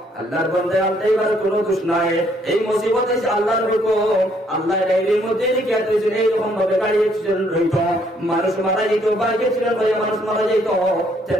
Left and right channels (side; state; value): both; normal; correlation 0.67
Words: আল্লাহর বন্দে ড্রাইভার কোনো দোষ নাই এই মুসিবত এসে আল্লাহর হুকুম আল্লাহ ডায়েরির মধ্যে লিখে দিয়েছেন এইরকম ভাবে গাড়ি অ্যাক্সিডেন্ট হইত মানুষ মারা যেত বাইক অ্যাক্সিডেন্ট হয়ে মানুষ মারা যেত